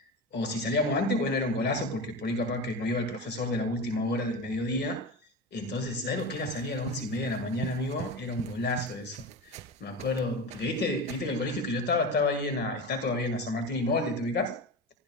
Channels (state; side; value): normal; both; correlation 0.25